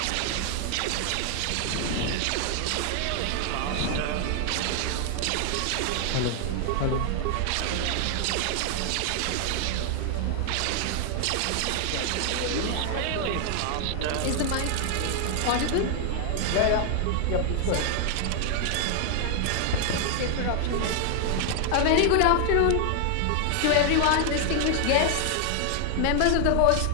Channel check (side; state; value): both; different; correlation 0.00